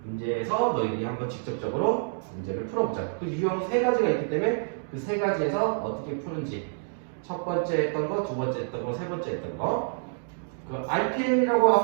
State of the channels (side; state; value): left; silent; digital silence